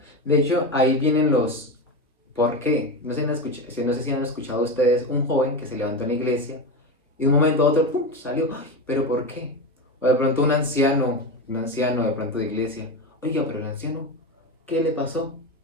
De hecho, ahí vienen los ¿por qué? No sé, no sé si han escuchado ustedes un joven que se levantó en la iglesia y de un momento a otro, ¡pum!, salió. ¡Ay! ¿Pero por qué? O de pronto un anciano de pronto de iglesia. Oiga, pero el anciano, ¿qué le pasó?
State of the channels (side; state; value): both; normal; correlation 0.19